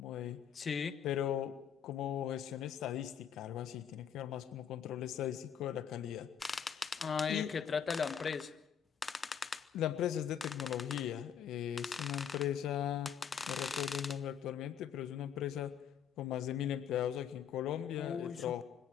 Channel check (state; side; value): quieter; right; 8.4 dB